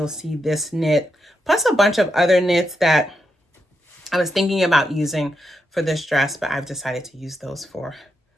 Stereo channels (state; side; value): normal; both; correlation 0.83